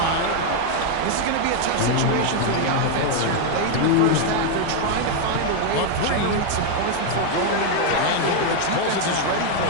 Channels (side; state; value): both; different; correlation 0.01